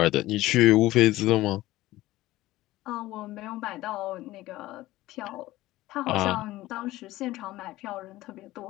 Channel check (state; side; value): quieter; right; 17.0 dB